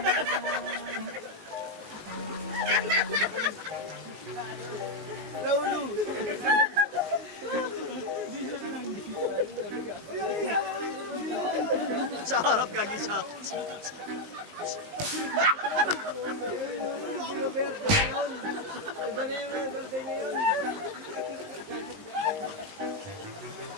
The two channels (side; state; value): left; late; 19 ms